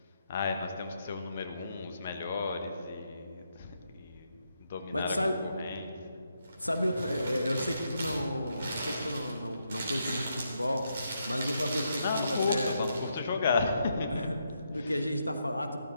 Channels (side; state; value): both; inverted; correlation -0.80